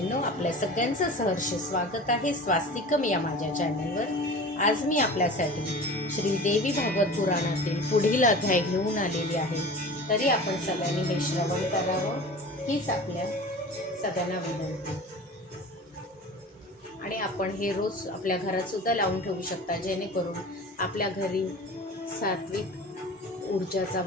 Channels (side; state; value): both; normal; correlation 0.37